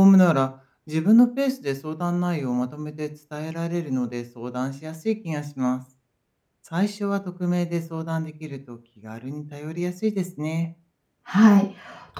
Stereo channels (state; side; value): identical; both; correlation 1.00